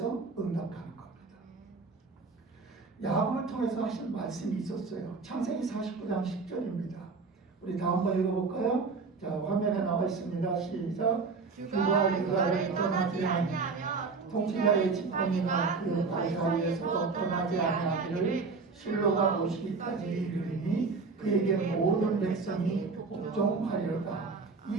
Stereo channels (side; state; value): left; quieter; 4.5 dB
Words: 응답하는 겁니다. 야곱을 통해서 하신 말씀이 있었어요. 창세기 49장 10절입니다. 우리 다음 번 읽어볼까요? 자, 화면에 나와 있습니다. 시작. 주가 유다를 떠나지 아니하며 통치자의 지팡이가 그 발 사이에서 떠나지 아니하기를 실로가 오시기까지 이르리니 그에게 모든 백성이 복종하리로다.